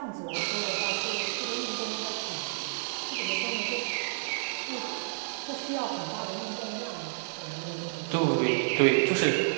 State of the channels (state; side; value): silent; left; 58 dB below the other